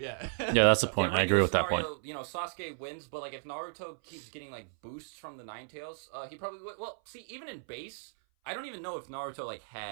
That's the point. I agree with that point. Sasuke wins, but like if Naruto keeps getting like boosts from the Nine Tails, he probably would. Well, see, even in base, I don't even know if Naruto like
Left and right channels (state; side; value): silent; left; 55 dB below the other